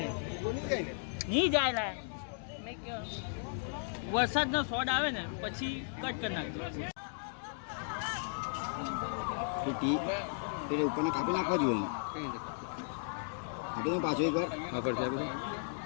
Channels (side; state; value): right; silent; digital silence